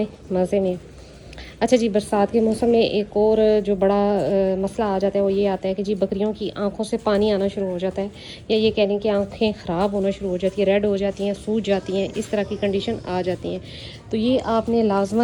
मज़े में। अच्छा जी, बरसात के मौसम में एक और जो बड़ा मसला आ जाता है वो ये आता है कि जी बकरियों की आंखों से पानी आना शुरू हो जाता है, या ये कह लें कि आंखें ख़राब होना शुरू हो जाती है, रेड हो जाती हैं, सूज जाती हैं, इस तरह की कंडीशन आ जाती हैं। तो ये आपने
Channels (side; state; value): both; identical; correlation 1.00